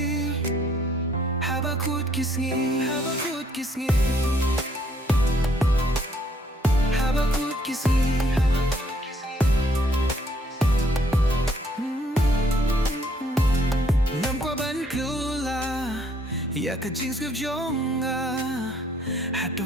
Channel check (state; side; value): normal; both; correlation 0.66